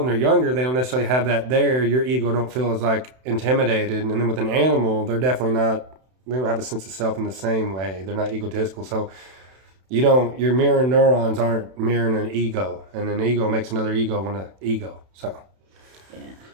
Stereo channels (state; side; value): late; left; 31 ms